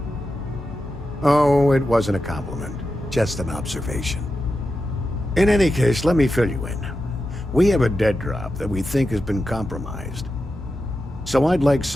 Oh, it wasn't a compliment. Just an observation. In any case, let me fill you in. We have a dead drop that we think has been compromised. So I'd like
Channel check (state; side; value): normal; both; correlation 0.90